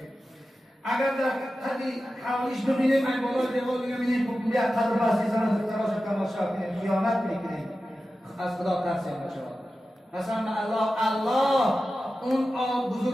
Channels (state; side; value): normal; both; correlation 0.93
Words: اگر در قدی حوالیش ببینیم این بالا دیوار ببینیم بکنیم یک قدر بستی زنه دکتراش تماشا کنیم، خیانت میکنیم. از خدا ترسیم بشود. قسم الله اون